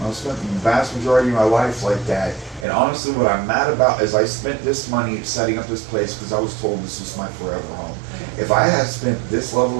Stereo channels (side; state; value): left; drops out; at 2.7 s